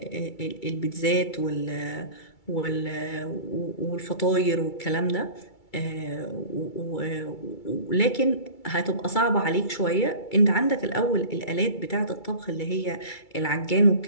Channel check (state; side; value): late; right; 2.3 ms